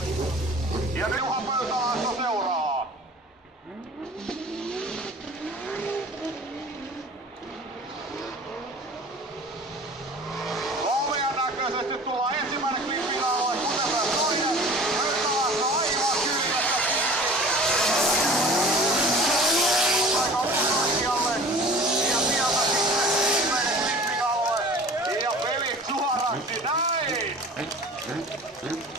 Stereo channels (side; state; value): both; normal; correlation 0.43